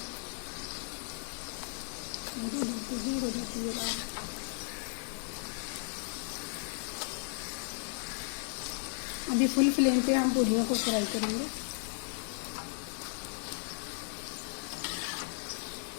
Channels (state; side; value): silent; right; 54 dB below the other